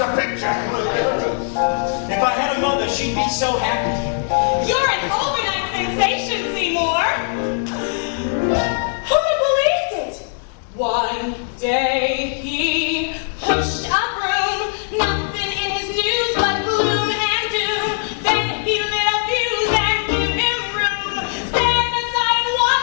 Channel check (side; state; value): right; silent; digital silence